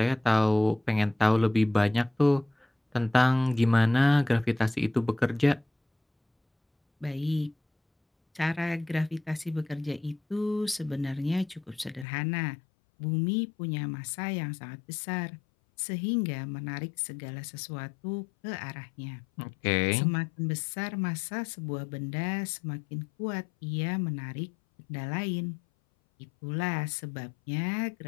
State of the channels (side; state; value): right; drops out; at 12.1 s